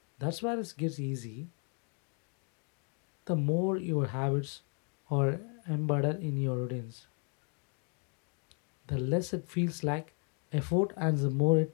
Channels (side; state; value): right; quieter; 38.8 dB